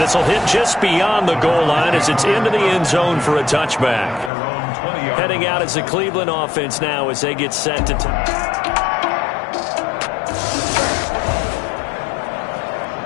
will hit just beyond the goal line as it's into the end zone for a touchback. Heading out as the Cleveland offense now as they get set to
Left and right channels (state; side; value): drops out; right; at 4.3 s